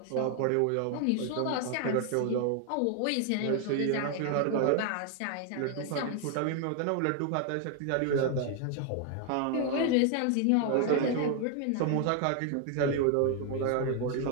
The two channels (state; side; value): different; both; correlation 0.00